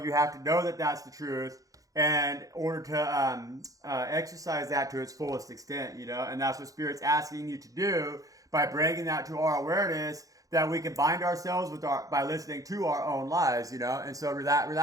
have to know that that's the truth, and in order to exercise that to its fullest extent, you know. And that's what Spirit's asking you to do by bringing that to our awareness, that we can bind ourselves with by listening to our own lies, you know. And so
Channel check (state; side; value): late; left; 0.17 ms